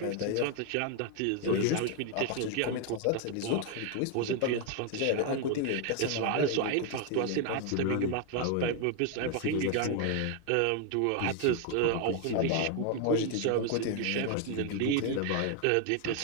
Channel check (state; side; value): different; both; correlation 0.00